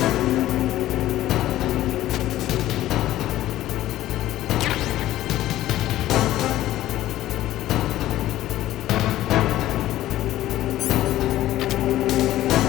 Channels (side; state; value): right; quieter; 14.5 dB